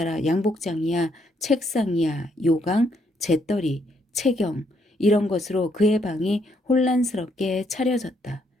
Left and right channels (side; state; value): both; normal; correlation 0.73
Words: 양복장이야 책상이야 요강 재떨이 채경 이런 것으로 그의 방이 혼란스럽게 차려졌다.